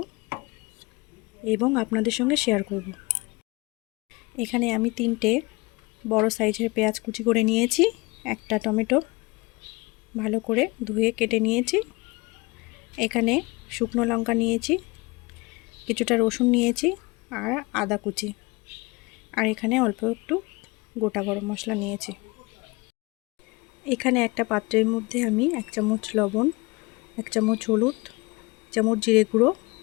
এবং আপনাদের সঙ্গে শেয়ার করব। এখানে আমি 3টে বড় সাইজের পেঁয়াজ কুচি করে নিয়েছি, একটা টমেটো ভালো করে ধুয়ে কেটে নিয়েছি, এখানে শুকনো লঙ্কা নিয়েছি, কিছুটা রসুন নিয়েছি আর আদা কুচি, আর এখানে অল্প একটু গোটা গরম মশলা নিয়েছি। এখানে একটা পাত্রের মধ্যে আমি 1 চামচ লবণ, 1 চামচ হলুদ, 1 চামচ জিরে গুঁড়ো,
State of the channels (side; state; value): right; quieter; 24.9 dB